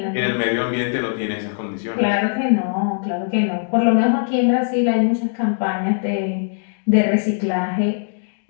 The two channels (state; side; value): silent; right; digital silence